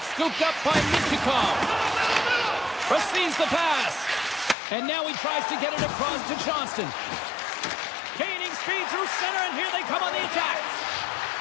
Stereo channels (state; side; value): drops out; right; at 4.5 s